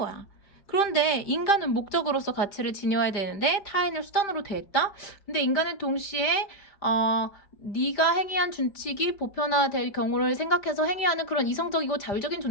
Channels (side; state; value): right; late; 5.0 ms